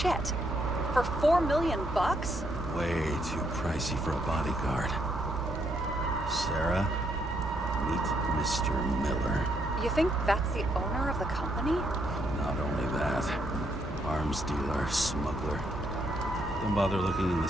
For $4 million bucks? Way too pricey for a bodyguard. Sarah, meet Mr. Miller. You think that's the owner of the company? Not only that, arms dealer, smuggler. Don't bother looking in the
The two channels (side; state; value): both; normal; correlation 0.75